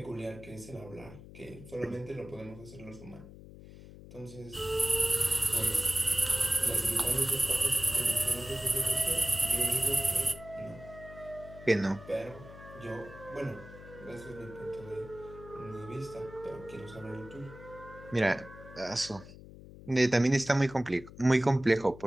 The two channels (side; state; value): left; noise; hum, 17 dB below the sound